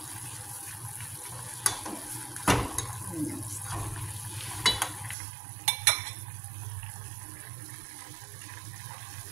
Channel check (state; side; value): drops out; left; at 5.2 s